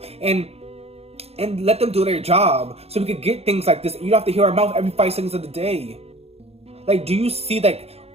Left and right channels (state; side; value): late; left; 0.29 ms